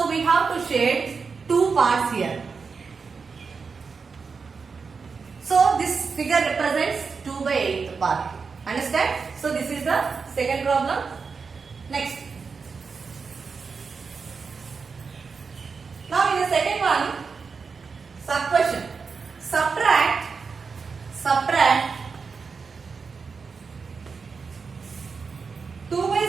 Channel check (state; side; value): quieter; left; 5.1 dB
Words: we have to shade 2 parts here. So this figure represents 2 by 8 part. Understand? So this is the second problem. Next. Now in the second one, sub question. Subtract 2 by